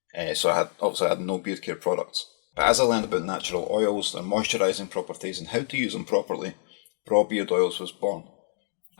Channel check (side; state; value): right; silent; digital silence